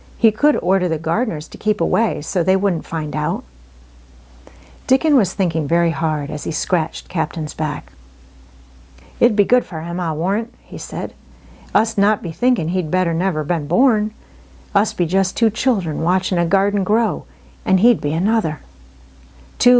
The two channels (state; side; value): identical; both; correlation 1.00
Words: He could order the gardeners to keep away so they wouldn't find out. Dickon was thinking very hard as he scratched Captain's back. "It'd be good for him, I warrant," he said. "Us not be thinking he'd better never been born. Us be just two children watching a garden grow, and he'd be another. Two